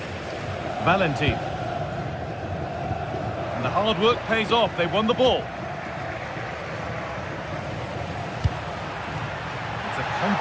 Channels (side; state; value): both; identical; correlation 1.00